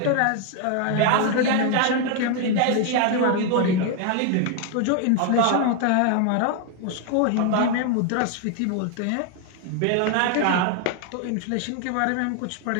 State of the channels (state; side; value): different; both; correlation 0.01